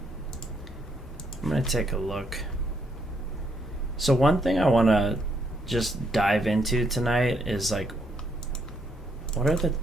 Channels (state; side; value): normal; both; correlation 0.74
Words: I'm going to take a look. So one thing I want to just dive into tonight is like, what are the